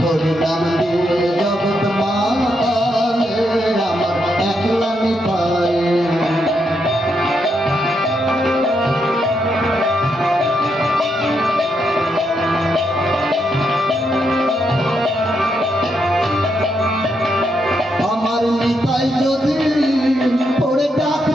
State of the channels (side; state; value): both; normal; correlation 0.80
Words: হরি নাম দিয়ে জগৎ মাতালে আমার একলা নিতাই। আমার নিতাই যদি ওরে